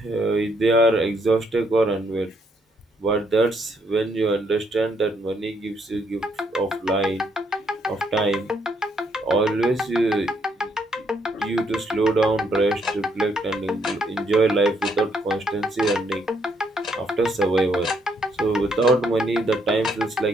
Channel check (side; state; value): both; normal; correlation 0.73